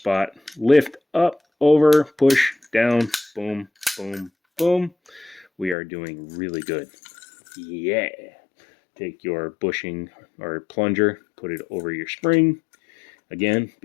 Lift up, over, push, down, boom, boom, boom. We are doing really good. Yeah. Take your bushing or plunger, put it over your spring. Again,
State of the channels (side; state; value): right; drops out; at 5.8 s